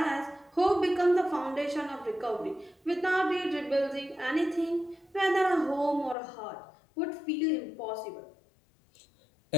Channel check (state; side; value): drops out; right; at 6.2 s